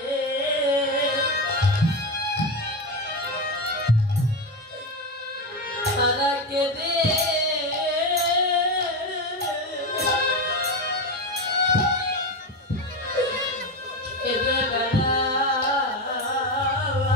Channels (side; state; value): both; normal; correlation 0.16